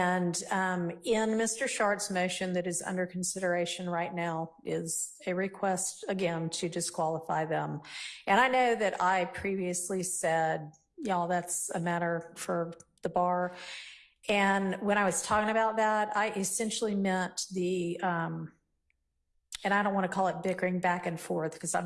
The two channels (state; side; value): identical; both; correlation 1.00